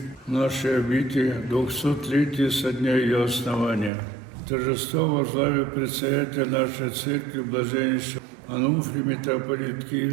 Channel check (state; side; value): drops out; left; at 3.9 s